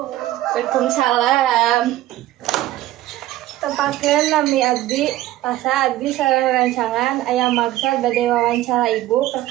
Tepakeun nami abdi asa abdi sareng rancangan aya maksud bade wawancara ibu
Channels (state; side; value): quieter; left; 15.0 dB